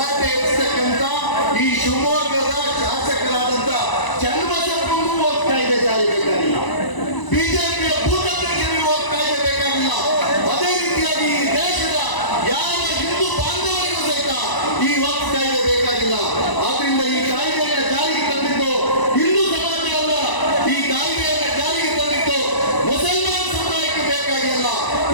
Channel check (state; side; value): late; right; 1.0 ms